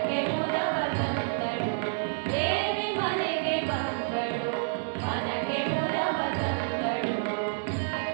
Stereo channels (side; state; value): left; silent; digital silence